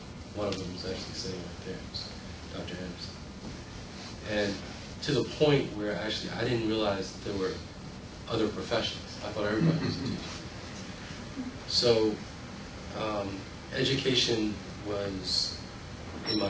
One of them was actually sitting right there, Dr. Anderson. And to the point where actually I didn't realize that there were other professions. I thought everybody was a teacher. So education was in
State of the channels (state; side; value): identical; both; correlation 1.00